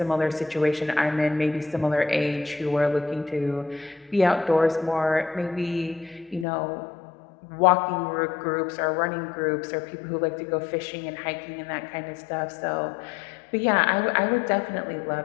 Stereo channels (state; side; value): drops out; right; at 6.5 s